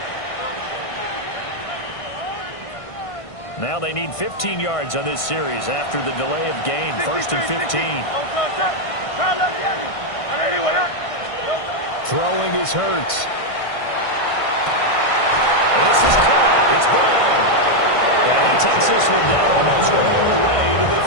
Now they need 15 yards on this series after the delay of game. 1st and 15. Throwing is Hurts. And this is caught. It's Brown. And he takes this one down almost all the way to the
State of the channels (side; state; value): right; late; 1.5 ms